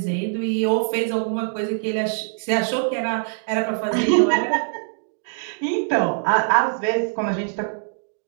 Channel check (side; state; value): left; silent; digital silence